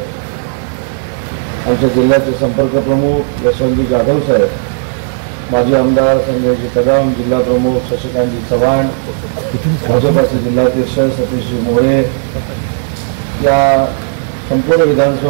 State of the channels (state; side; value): silent; left; digital silence